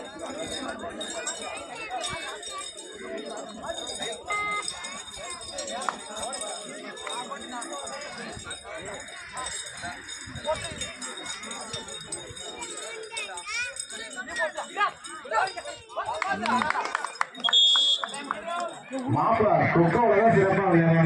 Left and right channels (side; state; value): both; identical; correlation 1.00